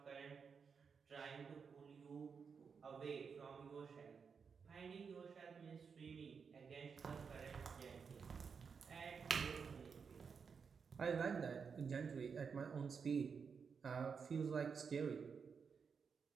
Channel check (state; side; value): quieter; left; 5.9 dB